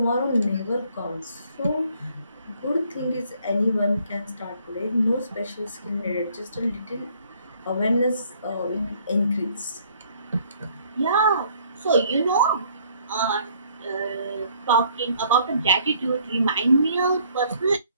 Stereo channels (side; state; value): both; inverted; correlation -0.63